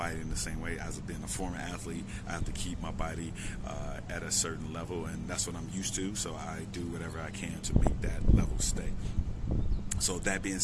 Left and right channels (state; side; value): identical; both; correlation 1.00